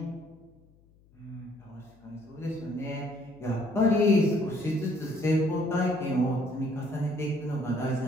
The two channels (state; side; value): noise; left; hum, 29 dB below the sound